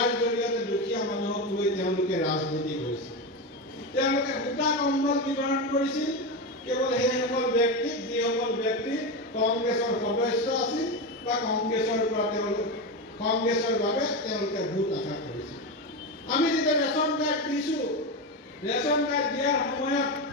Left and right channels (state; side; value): normal; both; correlation 0.16